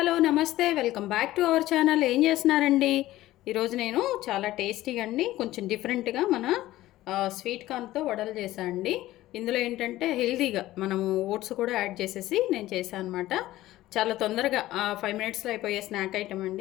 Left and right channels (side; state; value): right; quieter; 15.8 dB